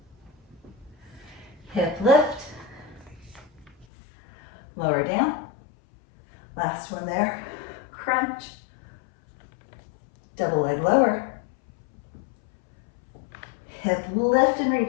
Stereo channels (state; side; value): drops out; right; at 3.9 s